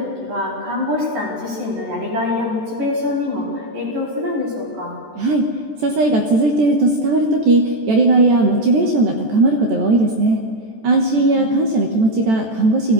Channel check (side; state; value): left; late; 14 ms